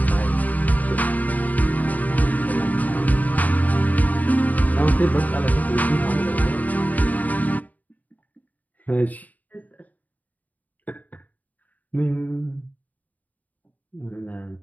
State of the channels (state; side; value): late; right; 0.077 ms